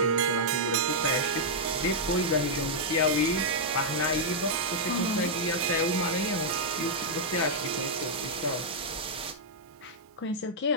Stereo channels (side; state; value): both; normal; correlation -0.06